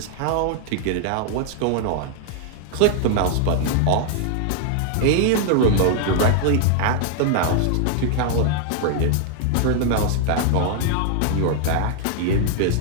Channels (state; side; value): different; both; correlation 0.00